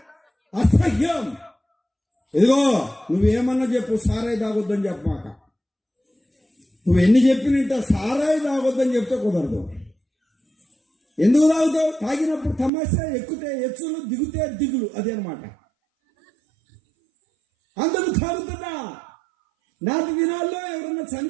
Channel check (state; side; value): drops out; left; at 12.7 s